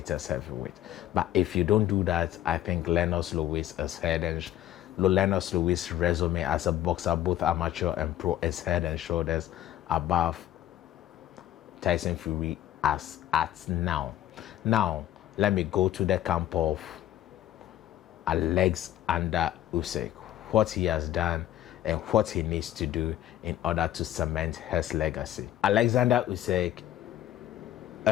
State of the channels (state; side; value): quieter; right; 12.5 dB